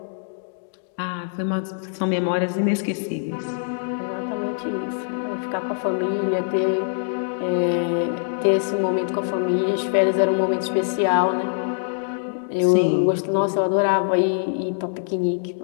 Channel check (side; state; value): right; silent; digital silence